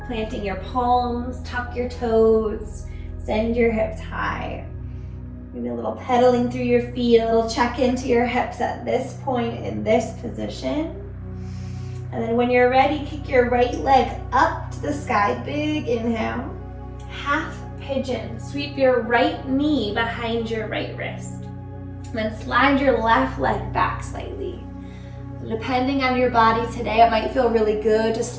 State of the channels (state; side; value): identical; both; correlation 1.00